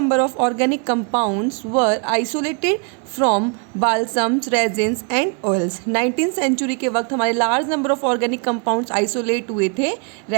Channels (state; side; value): quieter; left; 36.3 dB